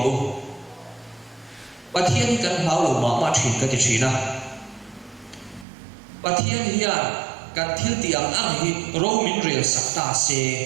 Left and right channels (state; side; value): drops out; left; at 5.7 s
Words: u, bà thiên cần háo lẩu mà chuyển cái gì na, bà thiên hiền cần thiếu tiếng ăn hi, rau min rêu sắc ta se